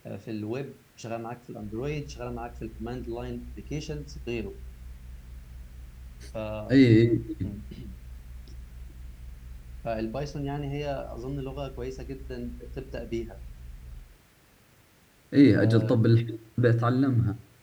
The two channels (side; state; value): both; identical; correlation 1.00